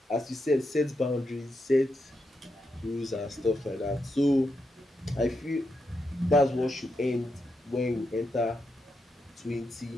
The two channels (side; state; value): both; normal; correlation 0.84